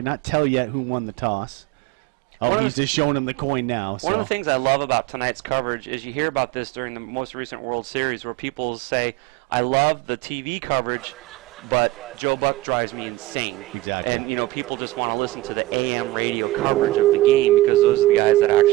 tell yet who won the toss. Oh, he's just showing him the coin now. One of the things I love about tonight's coverage is you hear about this during the most recent World Series where people say, I love the TV coverage, but Joe Buck drives me insane. Exactly. And, you know, people just want to listen to the AM radio coverage of the game because those are the guys that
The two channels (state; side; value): quieter; left; 17.7 dB